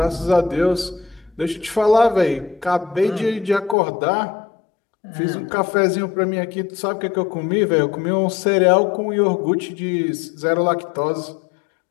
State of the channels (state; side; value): drops out; right; at 3.8 s